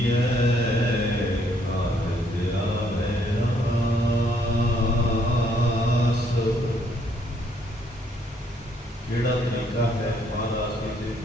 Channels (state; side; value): normal; both; correlation 0.68